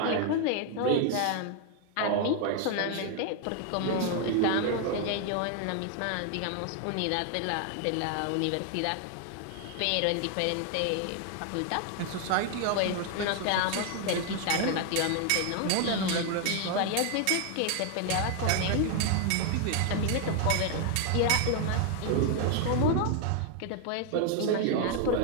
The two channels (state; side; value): different; both; correlation 0.00